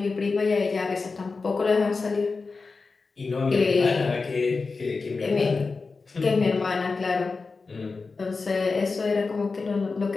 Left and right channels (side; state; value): right; quieter; 4.3 dB